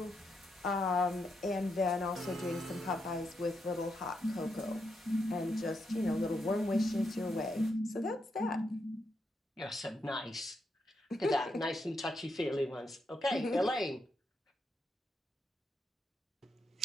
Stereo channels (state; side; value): normal; both; correlation 0.82